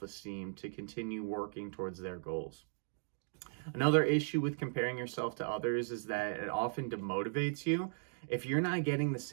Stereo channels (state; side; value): silent; left; digital silence